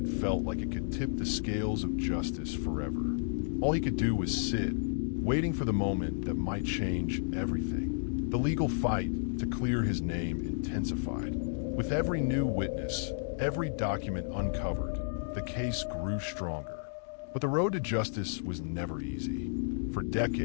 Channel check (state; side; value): silent; right; digital silence